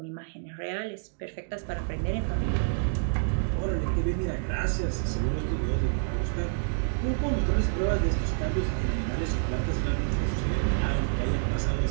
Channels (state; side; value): silent; left; digital silence